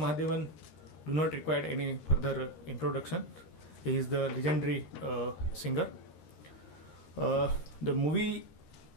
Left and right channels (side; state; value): right; late; 13 ms